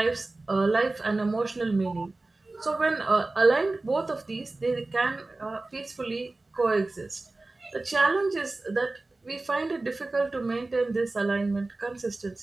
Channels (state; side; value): quieter; left; 3.1 dB